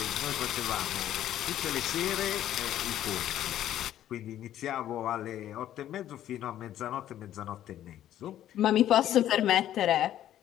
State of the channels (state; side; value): quieter; right; 11.9 dB